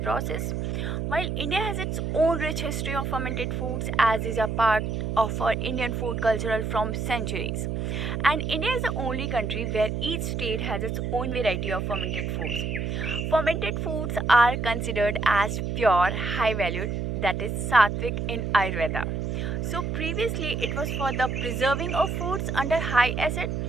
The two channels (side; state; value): right; noise; hum, 2 dB below the sound